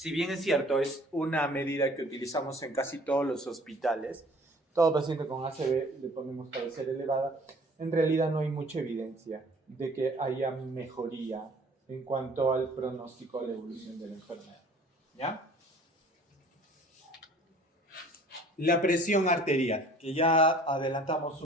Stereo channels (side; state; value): both; normal; correlation 0.51